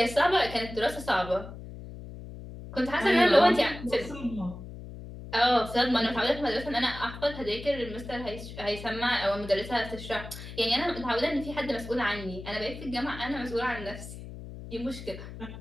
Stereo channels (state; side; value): noise; left; hum, 12 dB below the sound